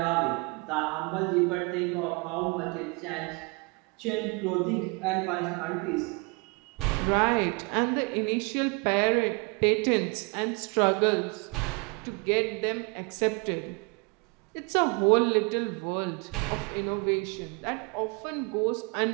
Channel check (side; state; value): left; quieter; 31.2 dB